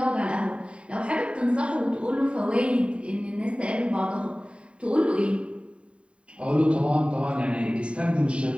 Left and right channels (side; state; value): left; late; 0.057 ms